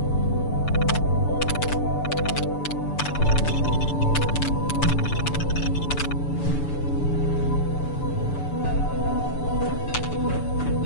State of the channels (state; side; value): late; right; 6.9 ms